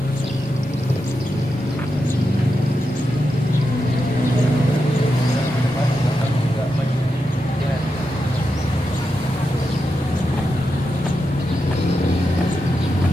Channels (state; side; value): normal; both; correlation 0.87